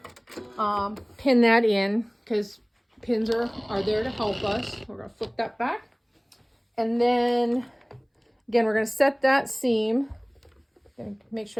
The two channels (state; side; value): identical; both; correlation 1.00